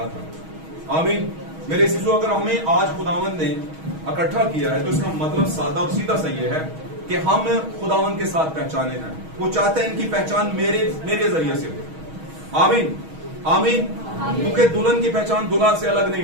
تھا. آمین. میرے عزیزو, اگر ہمیں آج خداوند نے اکٹھا کیا ہے تو اس کا مطلب سادہ اور سیدھا سا یہ ہے کہ ہم خداوند کے ساتھ پہچانے ہیں. وہ چاہتے ہیں ان کی پہچان میرے ذریعے سے ہو. آمین. آمین. کیونکہ دلہن کی پہچان دلہا سے الگ نہیں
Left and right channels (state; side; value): late; left; 6.3 ms